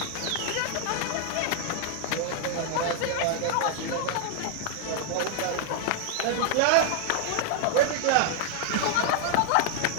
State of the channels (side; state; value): both; different; correlation 0.00